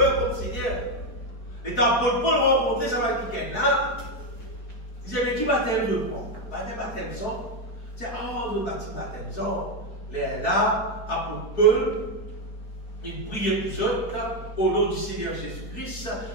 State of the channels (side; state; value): right; late; 4.6 ms